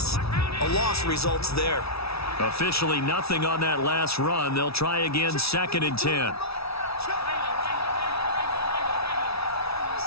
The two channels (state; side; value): late; right; 0.77 ms